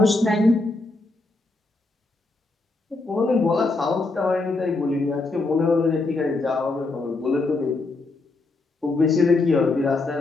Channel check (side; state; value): right; quieter; 3.3 dB